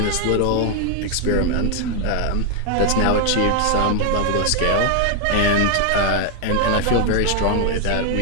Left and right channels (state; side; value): different; both; correlation 0.00